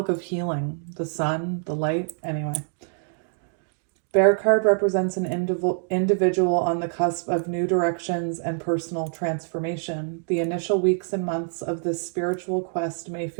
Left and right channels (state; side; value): silent; left; 61 dB below the other